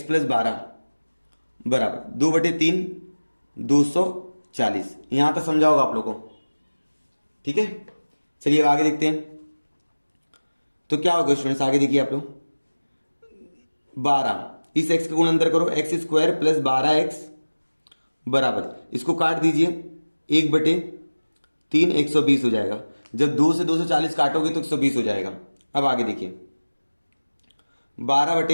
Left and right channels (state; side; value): inverted; both; correlation -1.00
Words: प्लस 12 बराबर 2/3 240। यहां तक समझा होगा आप लोगों को, ठीक है। चलिए अब आगे देखते हैं। तो क्या होगा स्टूडेंट्स, आगे देखिए आप लोग, 12 इस x का गुण अंदर करो, एक्स स्क्वायर प्लस 12x बराबर, इसको काट दीजिए 1/3 120 हो जाएगा। जब 2 से 240 काटोगे तो 120 हो जाएगा। अब आगे देखिए